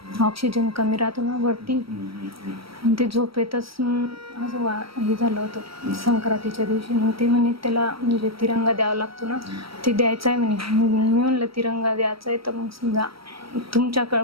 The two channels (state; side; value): late; left; 0.75 ms